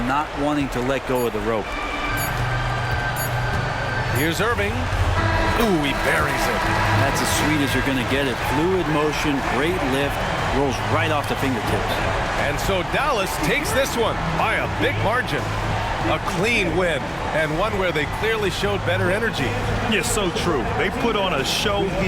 not wanting to let go of the rope. Here's Irving. Ooh, he buries it. That's as sweet as you're going to get it. Fluid motion, great lift, rolls right off the fingertips. And so Dallas takes this one by a big margin. A clean win, and one where they clearly showed better energy. Yeah, so true. They put on a show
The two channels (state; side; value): identical; both; correlation 1.00